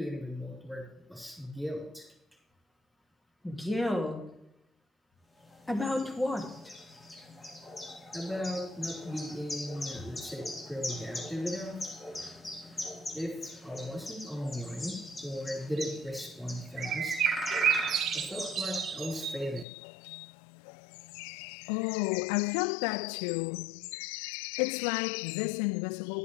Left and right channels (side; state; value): right; drops out; at 19.7 s